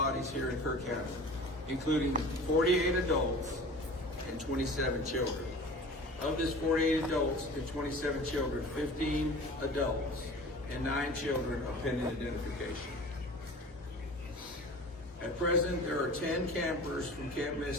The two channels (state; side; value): normal; both; correlation 0.40